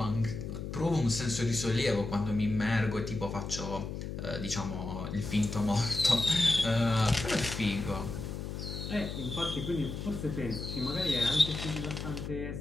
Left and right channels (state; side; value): noise; left; hum, 6 dB below the sound